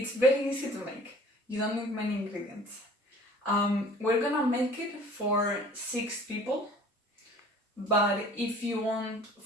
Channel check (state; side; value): normal; both; correlation 0.48